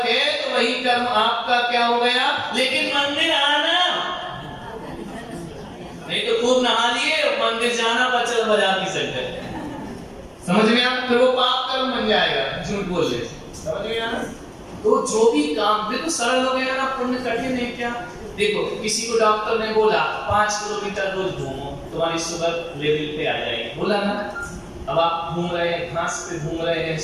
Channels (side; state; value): both; identical; correlation 1.00